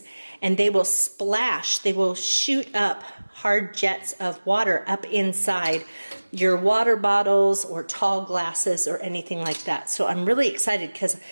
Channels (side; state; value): both; inverted; correlation -1.00